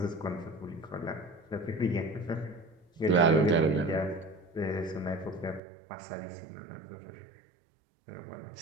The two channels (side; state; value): left; drops out; at 5.6 s